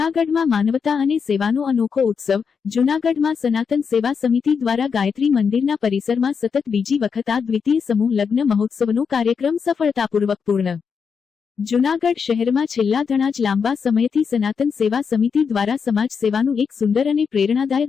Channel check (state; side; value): quieter; right; 6.1 dB